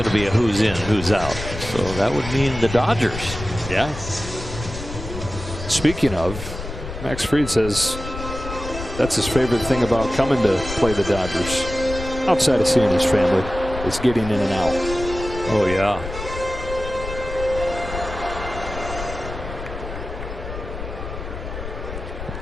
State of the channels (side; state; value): left; noise; rumble, 9 dB below the sound